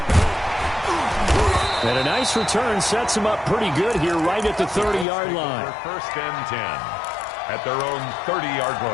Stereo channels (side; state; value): right; drops out; at 5.1 s